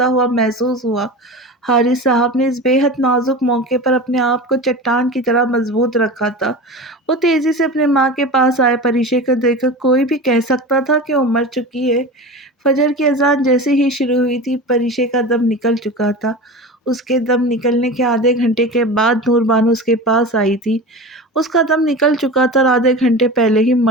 ہوا محسوس ہوا۔ حارث صاحب نے اس بے حد نازک موقع پر اپنے آپ کو چٹان کی طرح مضبوط رکھا تھا۔ وہ تیزی سے اپنے ماں کے پاس آئے۔ پریشے کو دیکھ کر کوئی بھی کہہ سکتا تھا کہ وہ مر چکی ہے۔ فجر کی اذان جیسے ہی شروع ہوئی تھی، پریشے کا دم نکل چکا تھا۔ اس کے دم نکلنے کے آدھے گھنٹے کے بعد نور بانو اس کے پاس آئی تھی۔ اس کا دم نکل چکا تھا اور آدھے گھنٹے پہلے ہی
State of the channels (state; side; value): normal; both; correlation 0.30